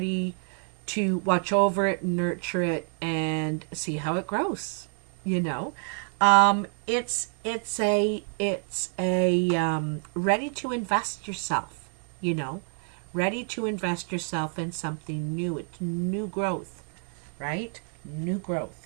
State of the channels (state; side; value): silent; left; 57 dB below the other